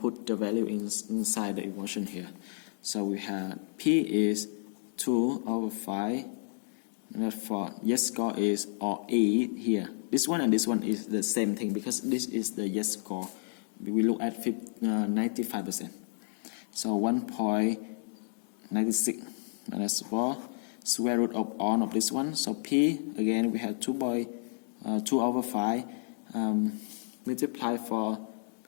the value inside the equation here. So we have P is 2 over 5. And for yes score is or 8 here. This one and this one is the same thing because this is the yes score. We look at 95%. So 1.96 minus 4 square root of all of this one. So P again we have 2 over 5. Multiply for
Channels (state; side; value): silent; right; digital silence